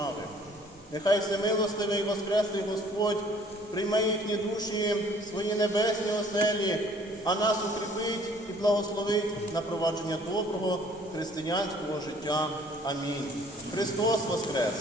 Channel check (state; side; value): normal; both; correlation 0.56